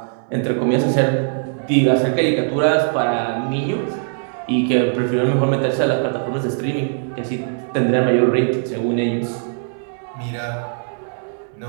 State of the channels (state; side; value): silent; left; 61 dB below the other